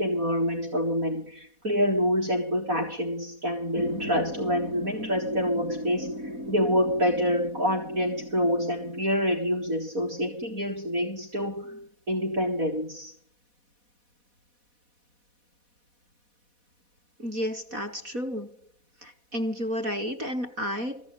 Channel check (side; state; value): left; late; 4.1 ms